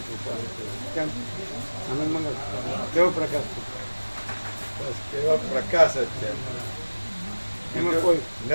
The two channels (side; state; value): both; inverted; correlation -1.00